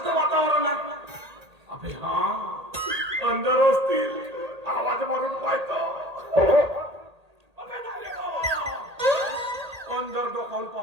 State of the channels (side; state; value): left; late; 1.8 ms